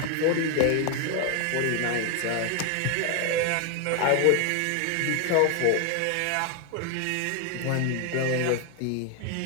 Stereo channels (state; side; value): different; both; correlation 0.01